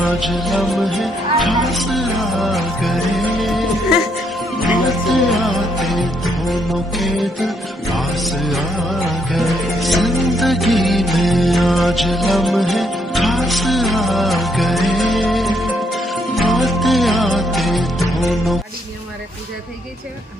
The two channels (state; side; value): normal; both; correlation 0.73